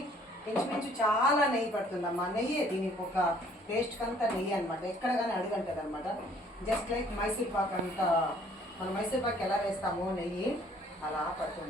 ఇంచుమించు చాలా నెయ్యి పడుతుందమ్మా. నెయ్యి దీనికి ఒక టేస్ట్ అంతా నెయ్యి అనమాట, ఎక్కడ కానీ అడుగంటది అనమాట. జస్ట్ లైక్ మైసూర్ పాక్ అంతా, మనం మైసూర్ పాక్ ఎలా వేస్తామో నెయ్యి అలా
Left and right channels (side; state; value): both; normal; correlation 0.59